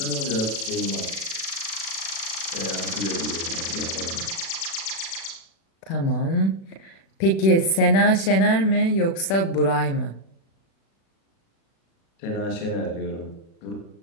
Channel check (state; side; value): late; right; 36 ms